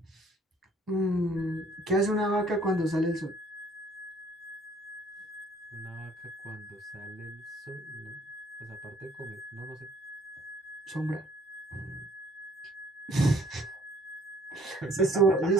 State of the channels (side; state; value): both; normal; correlation 0.59